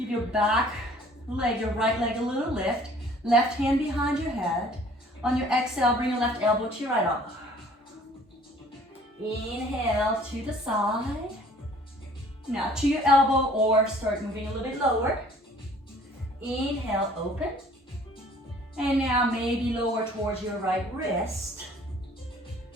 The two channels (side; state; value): both; normal; correlation 0.54